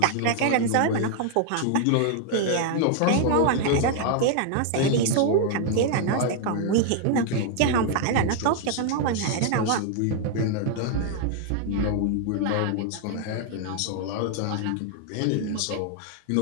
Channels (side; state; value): both; different; correlation 0.00